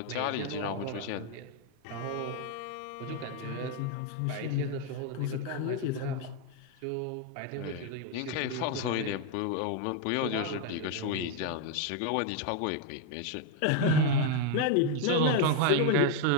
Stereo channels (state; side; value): different; both; correlation 0.01